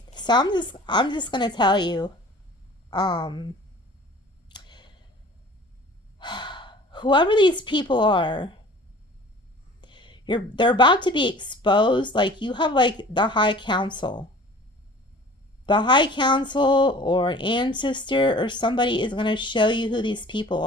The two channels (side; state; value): both; normal; correlation 0.46